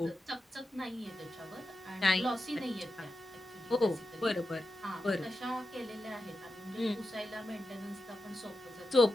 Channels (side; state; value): both; normal; correlation 0.90